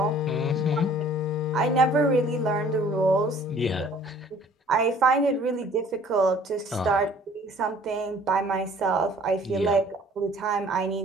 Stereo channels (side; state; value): both; normal; correlation 0.53